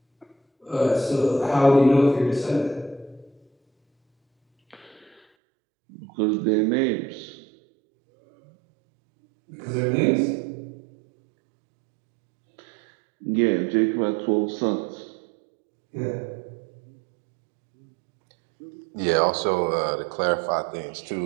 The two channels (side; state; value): left; drops out; at 5.2 s